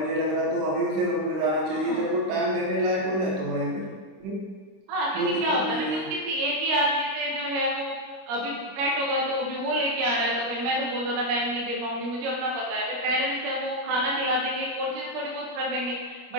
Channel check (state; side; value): late; left; 25 ms